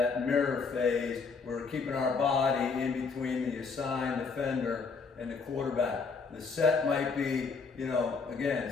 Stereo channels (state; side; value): quieter; right; 4.9 dB